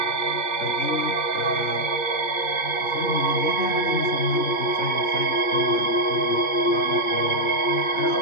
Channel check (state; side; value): late; right; 2.6 ms